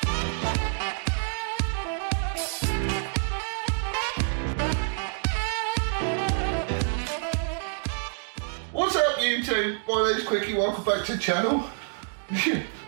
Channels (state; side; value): silent; left; digital silence